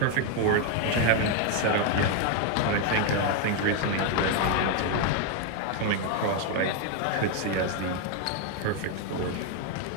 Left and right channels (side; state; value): both; different; correlation 0.01